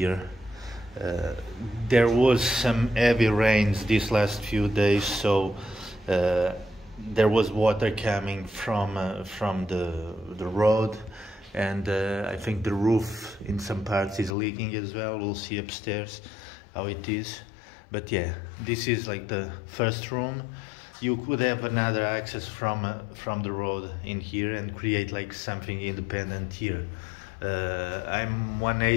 There was some heavy rains these last few days, so there was water coming from the road, and I think the roof in some parts is leaking as well. We'll see upstairs how it is. But yeah, this is like the first room. You could have another access from the road in here and create like something independent here. I'm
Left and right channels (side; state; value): right; drops out; at 14.4 s